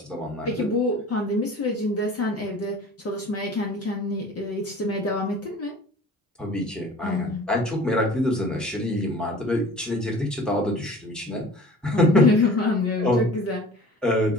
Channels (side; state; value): both; normal; correlation 0.44